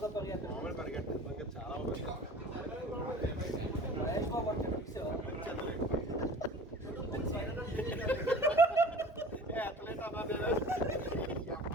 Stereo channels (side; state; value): both; normal; correlation 0.42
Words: పరిగెత్తాడు. మామూలు పరిగెట్టాను చాలా మహేష్ బాబు అంటే ఫిక్స్